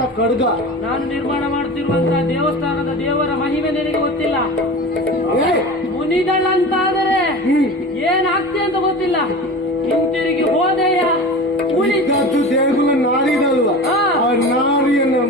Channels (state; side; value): normal; both; correlation 0.33